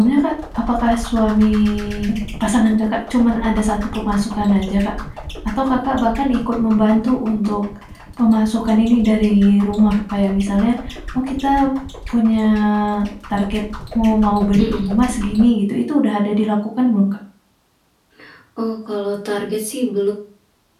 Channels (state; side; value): identical; both; correlation 1.00